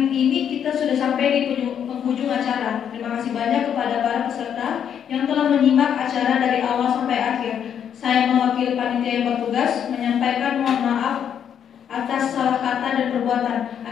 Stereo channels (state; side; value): quieter; right; 8.6 dB